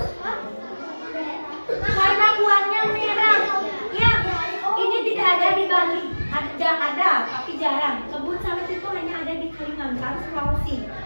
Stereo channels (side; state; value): both; inverted; correlation -1.00